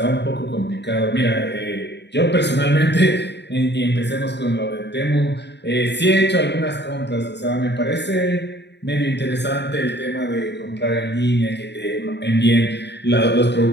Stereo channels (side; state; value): right; late; 0.50 ms